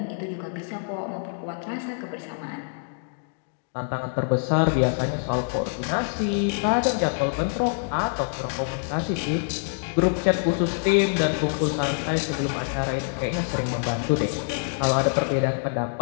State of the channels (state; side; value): silent; right; digital silence